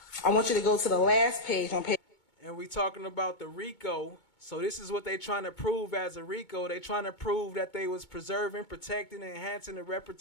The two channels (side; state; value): right; late; 2.2 ms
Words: I want you to go to the last page on page. And we talking about the RICO. So this is what they trying to prove as a RICO. They trying to prove that they was preserving, protecting, and enhancing the